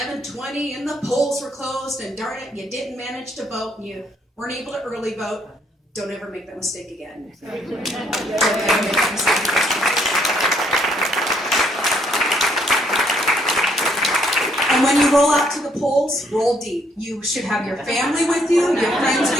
and the polls were closed and darn it, you didn't manage to vote and you weren't able to early vote, don't ever make that mistake again. Don't ever make that mistake again. And when you roll out to the polls, roll deep. You should have your family with you, your friends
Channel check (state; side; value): normal; both; correlation 0.69